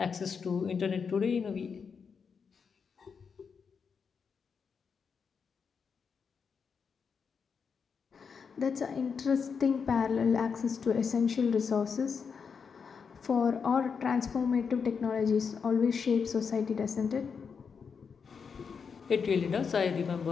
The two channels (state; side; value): quieter; right; 6.0 dB